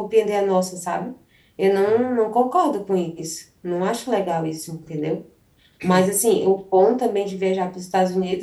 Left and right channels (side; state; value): both; identical; correlation 1.00